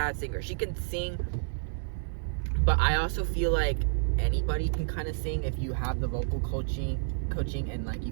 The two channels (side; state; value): left; silent; digital silence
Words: singer. She can sing, but I also feel like anybody can kind of sing if you have the vocal coaching, and like you